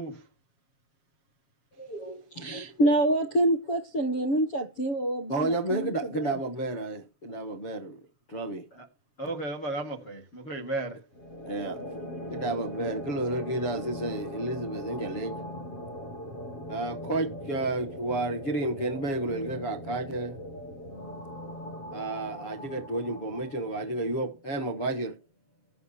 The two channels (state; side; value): late; right; 7.3 ms